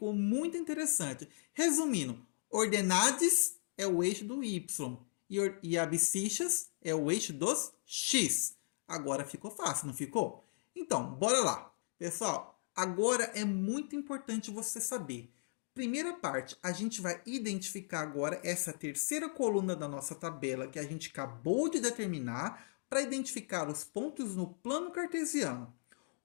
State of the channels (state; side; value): silent; right; digital silence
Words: muito interessante. Resumindo, ordenadas é o eixo do Y. E abscissas é o eixo dos X. Agora ficou fácil, não ficou? Então, bora lá. Pessoal, agora é muito importante você saber. Primeira parte, a gente vai identificar agora essa terceira coluna da nossa tabela que a gente acabou de determinar para identificar os pontos no plano cartesiano.